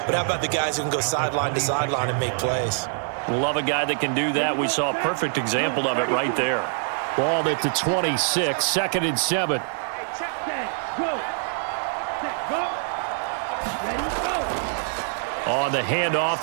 But how about the guys who can go sideline to sideline and make plays? Love a guy that can do that. We saw a perfect example of it right there. Ball at the 26, 2nd and 7. Set, go. Set, go. Ready, go. On the handoff,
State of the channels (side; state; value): left; silent; 62 dB below the other